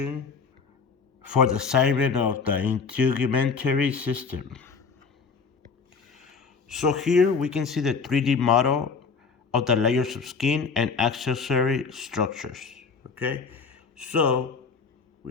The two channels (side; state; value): right; quieter; 5.2 dB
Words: for the assignment of the Integumentary system. So here we can see the 3D model of the layers of skin and accessory structures. Okay, so we're